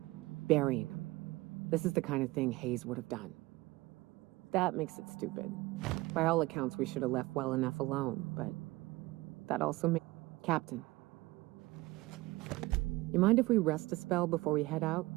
burying them. This is the kind of thing Hayes would have done. That makes it stupid. By all accounts, we should have left well enough alone, but that also makes... Captain. You mind if we rest a spell before we head out?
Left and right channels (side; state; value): left; quieter; 20.4 dB